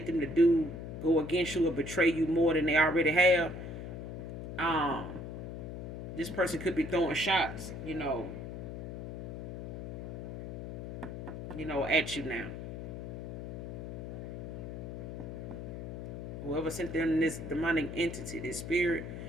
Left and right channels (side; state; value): left; noise; hum, 7 dB below the sound